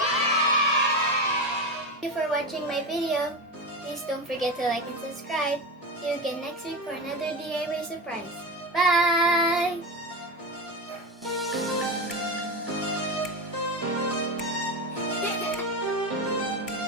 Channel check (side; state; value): both; normal; correlation 0.20